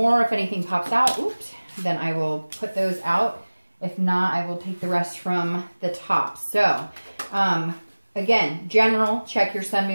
If anything pops out, oops, then I will put those out. If not, I will take the rest from the top. So, again, general, check your sun,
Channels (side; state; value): both; inverted; correlation -1.00